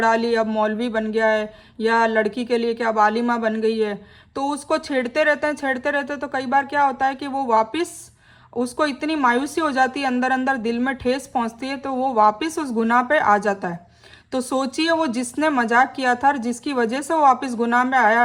ली, अब मौलवी बन गया है, या लड़की के लिए कि अब आलिमा बन गई है। तो उसको छेड़ते रहते हैं, छेड़ते रहते हैं। तो कई बार क्या होता है कि वो वापस, उसको इतनी मायूसी हो जाती है, अंदर अंदर दिल में ठेस पहुंचती है, तो वो वापस उस गुनाह पे आ जाता है। तो सोचिए, वो जिसने मजाक किया था और जिसकी वजह से वो वापस गुनाह में आया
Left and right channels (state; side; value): identical; both; correlation 1.00